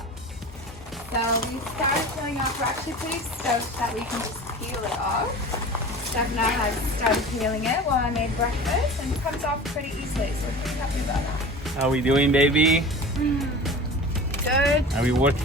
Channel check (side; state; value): both; normal; correlation 0.36